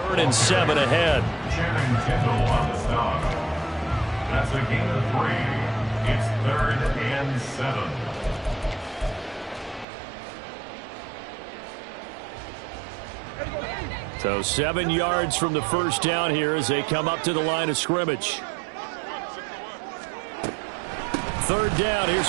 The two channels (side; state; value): left; drops out; at 9.9 s